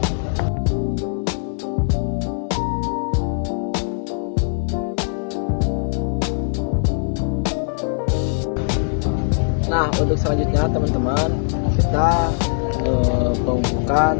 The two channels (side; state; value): right; silent; 62 dB below the other